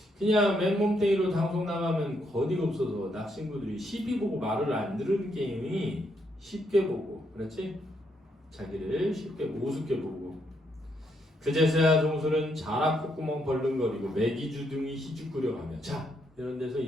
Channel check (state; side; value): normal; both; correlation 0.76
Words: 그냥 맨몸뚱이로 방송 나가면 거리가 없어서 낚시인구들이 시비 보고 말을 안 들은 게임이 쉽게 보고, 그렇지? 자기를 쉽게 보고 우습게 보고. 그제서야 종수는 자락 콧구멍 벌렁거리고 매기주둥이 희죽거려가며 자, 이런 데서